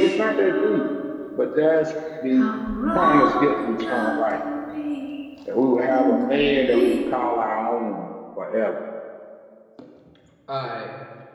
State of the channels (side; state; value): both; identical; correlation 1.00